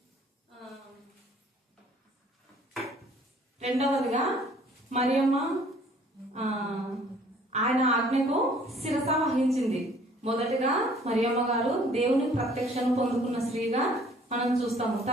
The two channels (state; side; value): normal; both; correlation 0.57